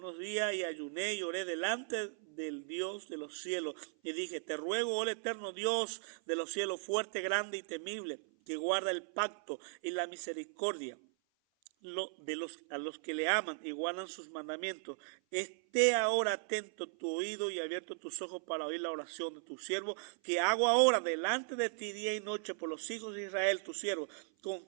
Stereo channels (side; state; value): left; silent; 53 dB below the other